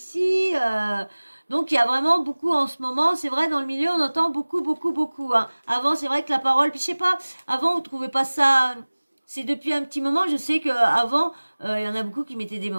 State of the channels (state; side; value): inverted; both; correlation -1.00